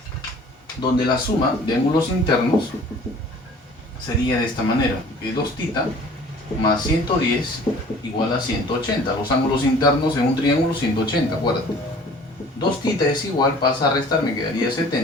sería de esta manera, que 2θ más 110 igual a 180. Los ángulos internos en un triángulo 180, acuérdate. 2θ es igual, pasa a restar, me quedaría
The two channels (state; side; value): normal; both; correlation 0.49